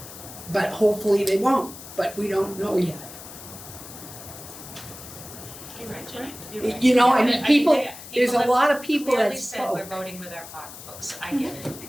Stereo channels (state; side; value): noise; left; hiss, 14 dB below the sound